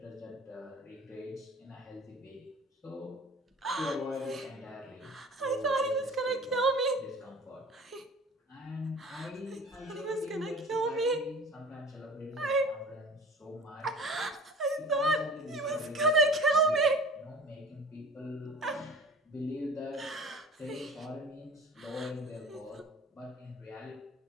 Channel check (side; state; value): both; normal; correlation 0.42